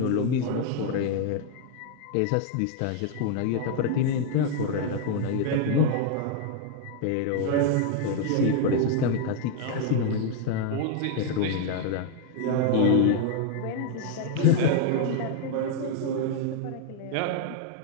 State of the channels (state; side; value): different; both; correlation 0.00